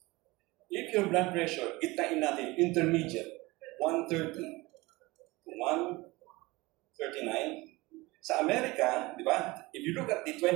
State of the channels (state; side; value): quieter; left; 22.0 dB